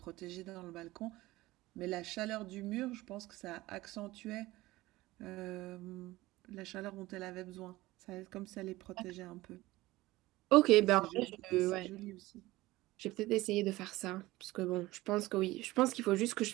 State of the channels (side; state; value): left; quieter; 18.7 dB